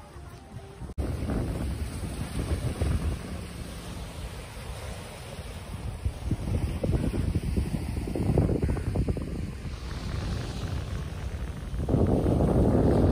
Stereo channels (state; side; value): identical; both; correlation 1.00